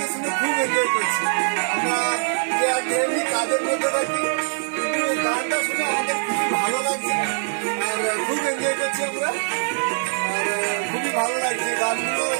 শুনে খুব এনজয় করছি। আমরা যে ডেইলি কাজের মধ্যে থাকি, কিন্তু এই গানটা শুনে আমাদের খুবই ভালো লাগছে আর খুব এনজয় করছি আমরা। আর খুবই ভালো লাগছে গানগুলো,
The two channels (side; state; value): left; silent; digital silence